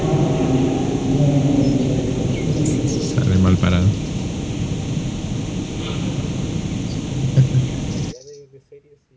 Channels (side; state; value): both; identical; correlation 1.00